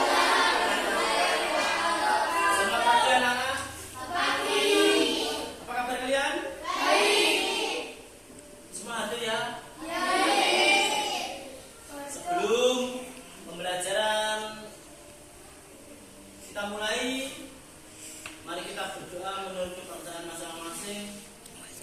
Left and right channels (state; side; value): identical; both; correlation 1.00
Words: Selamat pagi anak-anak. Apa kabar kalian? Baik. Semua hadir ya? Sebelum pembelajaran kita mulai, mari kita berdoa menurut kepercayaan masing-masing.